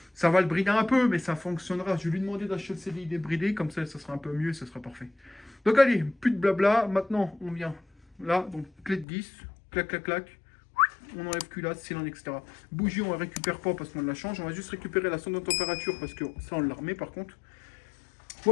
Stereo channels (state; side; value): drops out; right; at 9.1 s